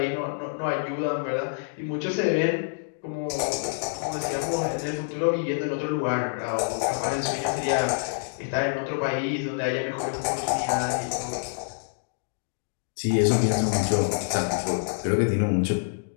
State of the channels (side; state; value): right; silent; digital silence